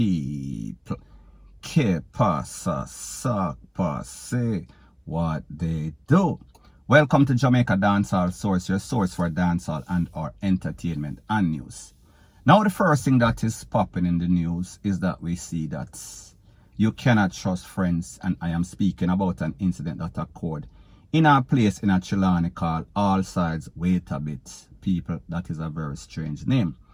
Que pasa, sac passe, what they do. Welcome to Jamaica Dancehall Source, your source for dancehall and our entertainment and news. Now the first thing that is popping in the news is that we see that you cannot trust friends, and I am speaking about an incident that occurred in a place in a Chilani called All Sides Wait a Bit. People, that is a very strange name.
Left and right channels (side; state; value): both; identical; correlation 1.00